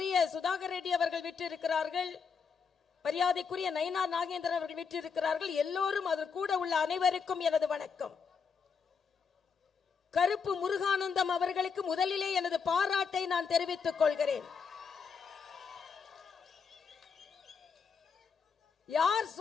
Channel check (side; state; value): right; quieter; 5.9 dB